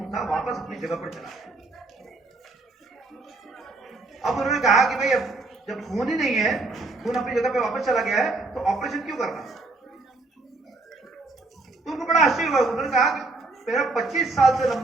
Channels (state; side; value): quieter; left; 3.3 dB